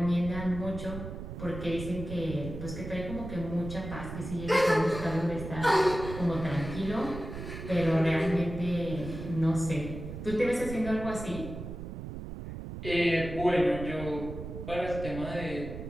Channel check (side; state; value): right; noise; rumble, 8 dB below the sound